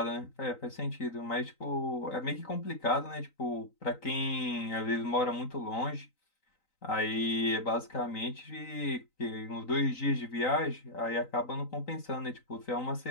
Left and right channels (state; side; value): late; right; 3.9 ms